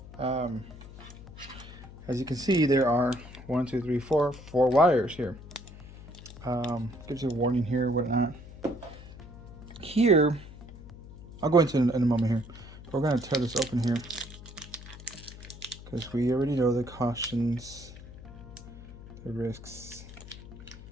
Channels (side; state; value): left; noise; hum, 16 dB below the sound